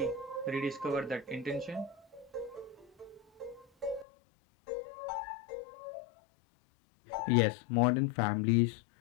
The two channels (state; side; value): drops out; right; at 4.0 s